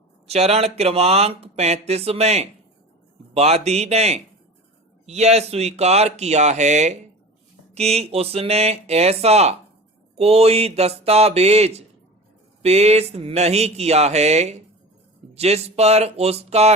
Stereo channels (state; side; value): normal; both; correlation 0.35